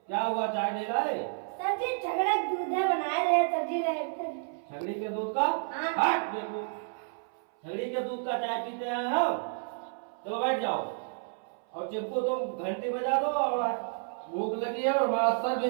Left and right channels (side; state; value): left; silent; 57 dB below the other